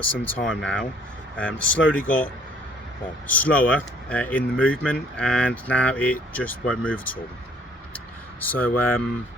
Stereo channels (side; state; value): both; normal; correlation 0.60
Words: some time now. Slowly got slower in the movement, and now it just won't move at all. So yeah, I'm